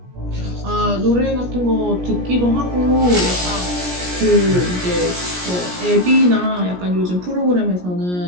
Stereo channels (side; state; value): left; late; 17 ms